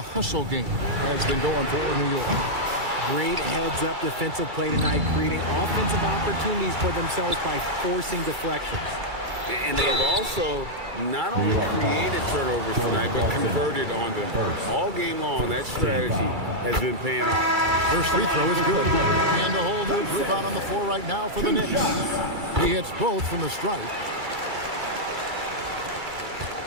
hustle game has been going for New York. Great heads-up defensive play tonight, creating offensive opportunities for themselves by forcing deflections. And they've also not only created turnovers tonight, but converted on them. All game long, that strategy has been paying off. First free throw is good. And a whole new group out on the floor right now for the Knicks. He hits both from the stripe.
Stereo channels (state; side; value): late; left; 2.3 ms